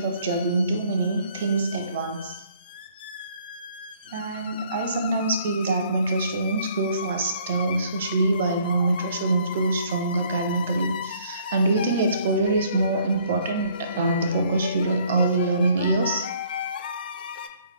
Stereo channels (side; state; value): both; inverted; correlation -0.61